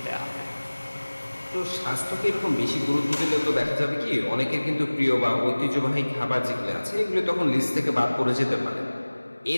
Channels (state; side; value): inverted; both; correlation -1.00